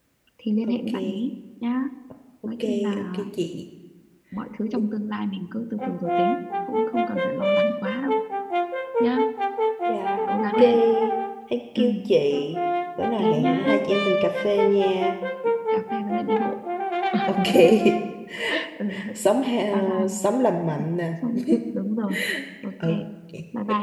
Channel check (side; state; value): both; identical; correlation 1.00